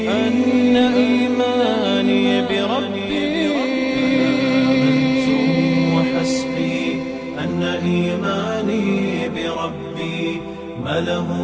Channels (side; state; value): both; identical; correlation 1.00